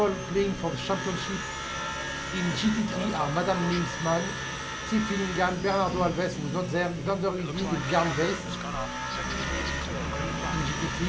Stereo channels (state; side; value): identical; both; correlation 1.00